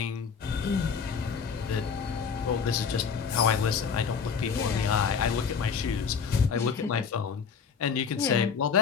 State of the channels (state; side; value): quieter; right; 6.2 dB